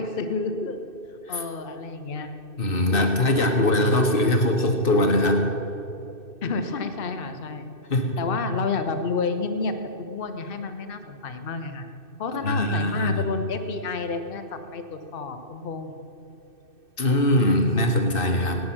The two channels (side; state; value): right; late; 2.6 ms